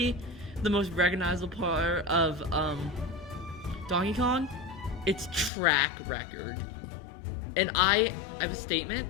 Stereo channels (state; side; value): drops out; right; at 5.5 s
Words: the most recognizable part of Donkey Kong. It's track record. And I have a statement.